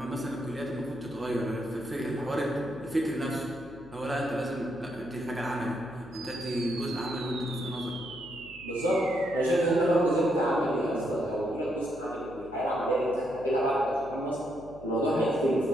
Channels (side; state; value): left; noise; hum, 20 dB below the sound